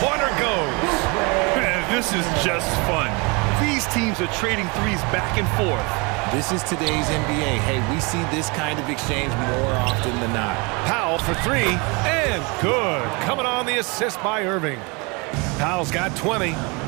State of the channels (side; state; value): left; quieter; 29.3 dB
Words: goes. Man, this is just fun. These teams are trading threes back and forth. This is today's NBA. Hey, we see this kind of exchange more often than not. Powell for three, and good. Coming on the assist by Irving. Powell's got 20.